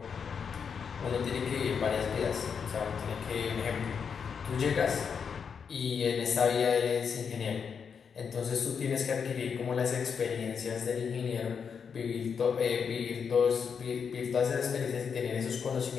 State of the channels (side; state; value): right; quieter; 6.5 dB